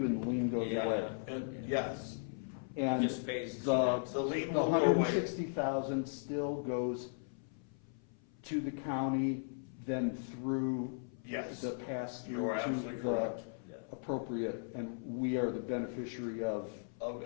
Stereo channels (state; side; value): silent; right; 53 dB below the other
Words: and the lien goes Yeah. away. And yes, And Just pays the, his the lien the will go away. 160,000 still goes to the county, then through Yes. the pass You are through to absolutely the correct. Yeah. appropriate, and we are the beneficiary of Of